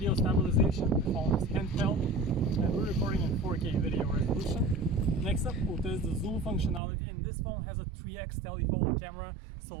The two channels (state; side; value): drops out; left; at 6.8 s